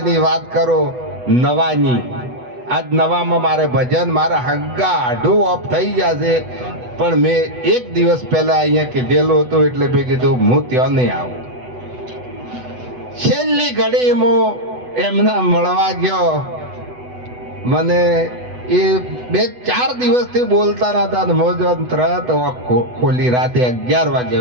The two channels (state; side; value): late; left; 8.1 ms